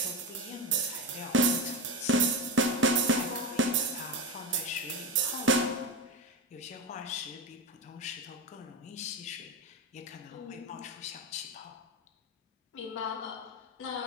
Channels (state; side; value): normal; both; correlation 0.19